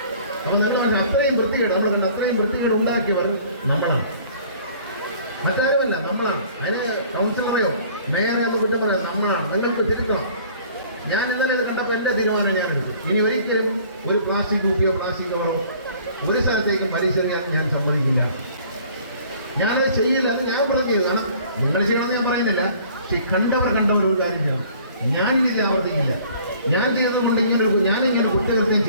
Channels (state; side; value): inverted; both; correlation -0.53